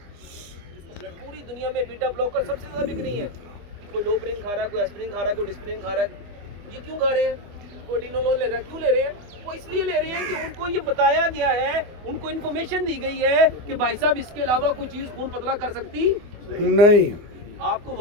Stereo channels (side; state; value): left; late; 24 ms